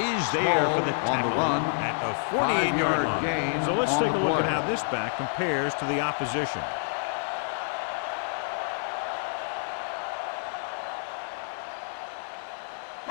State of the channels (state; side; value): silent; right; digital silence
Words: there for the tackle at the 48-yard line. So let's take a look at how this back compares to the opposition.